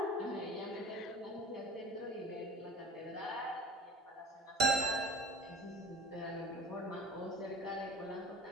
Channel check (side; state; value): both; normal; correlation 0.42